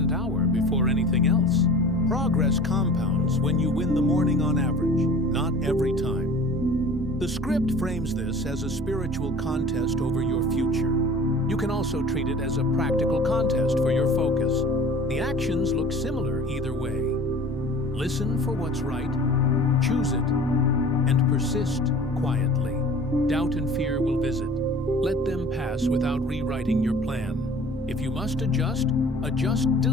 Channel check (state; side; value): normal; both; correlation 0.44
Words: hour before anything else. Progress compounds when you win the morning on average, not every time. The script frames this as a spiritual contest over your future. You can also treat it as a practical contest for your focus. The actions look similar either way. Listen for what's right, choose it, and persist quietly. Doubt and fear will visit. Let them pass without rewriting your plan. If you must adjust, adjust